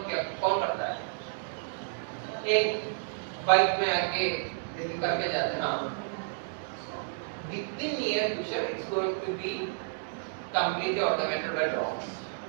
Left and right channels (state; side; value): silent; left; 57 dB below the other